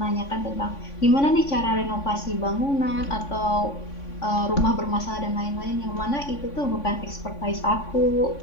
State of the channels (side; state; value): right; late; 3.5 ms